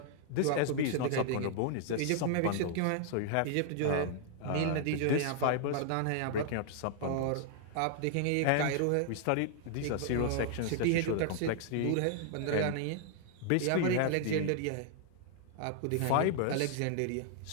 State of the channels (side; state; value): both; different; correlation 0.00